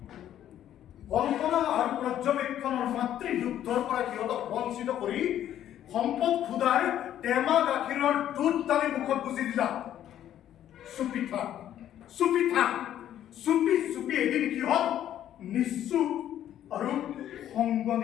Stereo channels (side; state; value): right; quieter; 11.3 dB